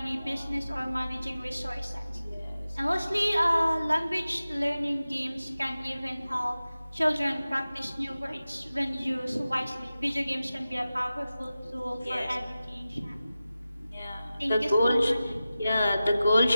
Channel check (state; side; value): inverted; both; correlation -0.95